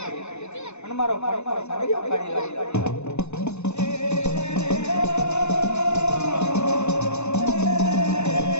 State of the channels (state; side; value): late; right; 0.82 ms